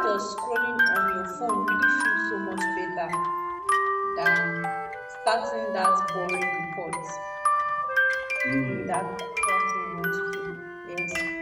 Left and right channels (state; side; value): identical; both; correlation 1.00